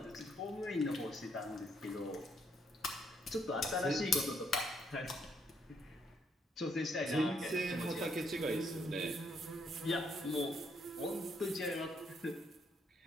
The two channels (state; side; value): normal; both; correlation 0.72